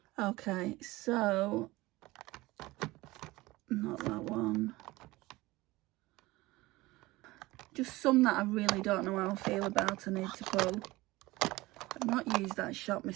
Okay, so not that one. Just some that I really don't know how I feel about, I need to pull. I've not used that Shop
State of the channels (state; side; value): quieter; left; 20.0 dB